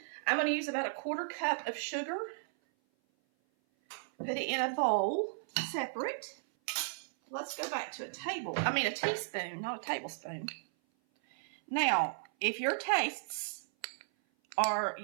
I'm going to use about a 1/4 cup of sugar. Put it in a bowl, separate. Let's go back to a teaspoon, not a tablespoon. Now, if your tastes are,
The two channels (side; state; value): left; silent; 54 dB below the other